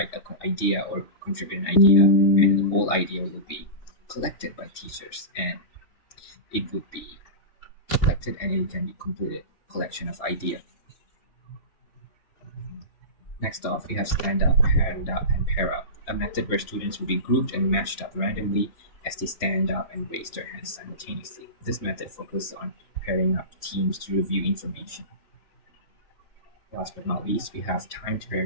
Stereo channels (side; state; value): right; late; 3.2 ms